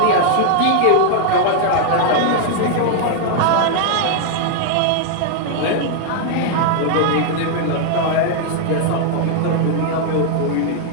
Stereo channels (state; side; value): different; both; correlation 0.00